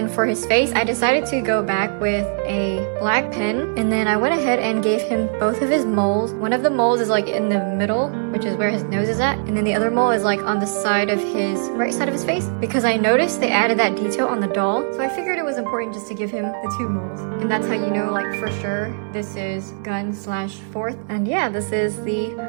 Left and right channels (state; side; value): silent; left; 65 dB below the other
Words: for his face, I decided to go back with a black pen, and then I went ahead and gave him both of his moles. One of the moles is like in the middle, which is where his nose is at, and then the other mole is like on the side of his right side of his face, because I noticed they added that detail on the doll, so I figured it was important just to give him the 2 moles. And that's how you know, like, for sure this is Gun / 4th. And yeah, this is the